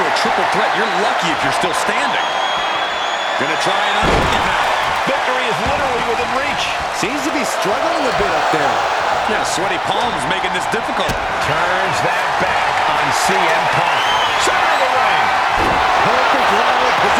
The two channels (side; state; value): both; identical; correlation 1.00